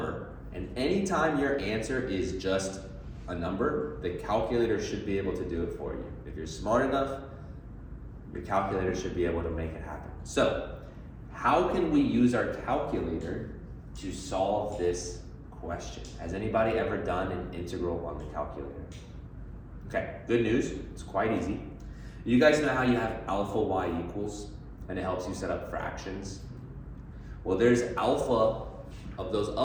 And anytime your answer is just a number, the calculator should be able to do it for you. If you're smart enough, your calculator should be able to make it happen. So, how can we use our calculator to solve this question? Has anybody ever done an integral on the calculator? Okay, good news, it's quite easy. You guys know how you have alpha y equals, and it helps you set up fractions? Well, there's alpha of those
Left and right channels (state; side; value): identical; both; correlation 1.00